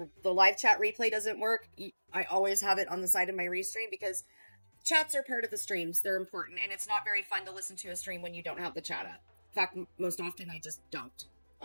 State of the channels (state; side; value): inverted; both; correlation -1.00